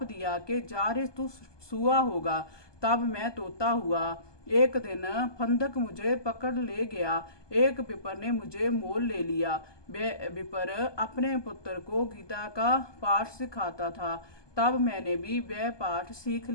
दिया कि जा रे तू सुआ होगा। तब मैं तोता हुआ। एक दिन फंदक मुझे पकड़ ले गया। एक विपर ने मुझे मोल ले लिया। विपर अपने पुत्र को गीता का पाठ सिखाता था। तब मैंने भी वह पाठ सीख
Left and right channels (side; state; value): right; late; 1.2 ms